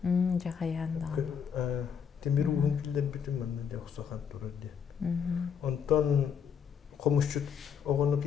Cakayandan. Demir uğun killer bitim ben de yoksa kan durur diye. Ondan komuşçut oğunu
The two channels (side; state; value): right; quieter; 7.2 dB